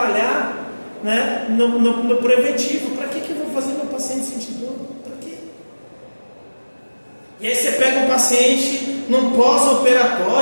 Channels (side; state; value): both; inverted; correlation -1.00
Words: né, no preventivo. Para que eu vou fazer meu paciente sentir dor? Para quê? E aí você pega um paciente num